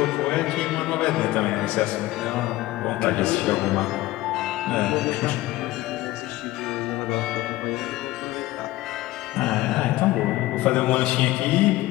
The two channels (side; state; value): right; quieter; 17.5 dB